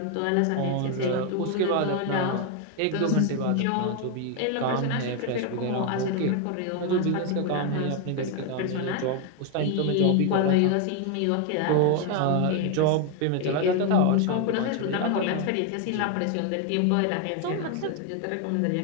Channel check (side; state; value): both; different; correlation 0.01